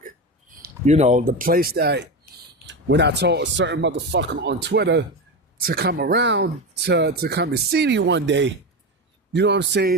You know, the place that when I told a certain motherfucker on Twitter to come around to come and see me one day, you know what I'm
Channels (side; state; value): both; normal; correlation 0.19